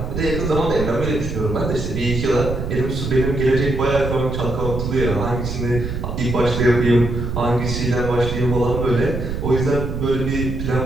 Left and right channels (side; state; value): right; noise; rumble, 4 dB below the sound